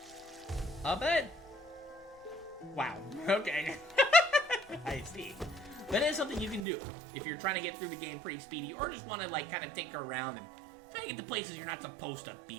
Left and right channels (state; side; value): drops out; left; at 6.7 s